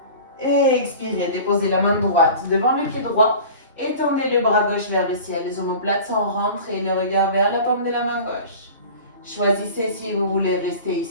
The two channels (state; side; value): inverted; both; correlation -0.39